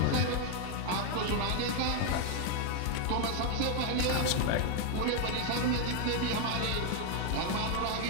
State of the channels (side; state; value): both; different; correlation 0.01